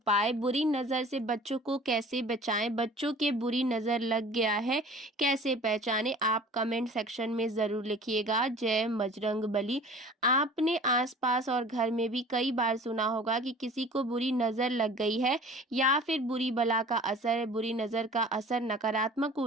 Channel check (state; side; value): normal; both; correlation 0.45